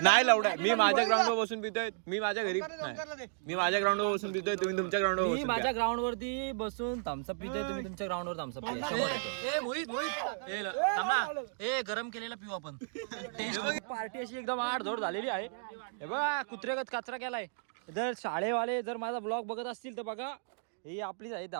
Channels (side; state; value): left; silent; digital silence